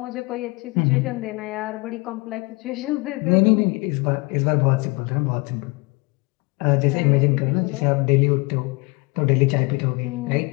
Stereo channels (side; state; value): right; quieter; 26.2 dB